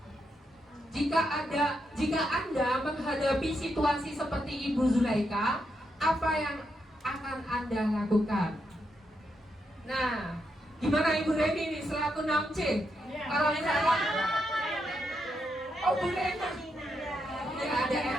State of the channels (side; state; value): both; normal; correlation 0.82